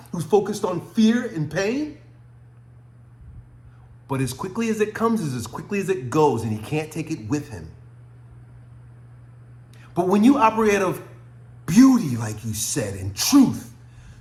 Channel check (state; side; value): identical; both; correlation 1.00